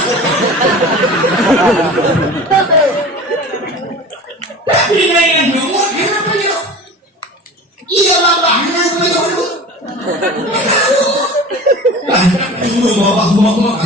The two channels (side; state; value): both; normal; correlation 0.37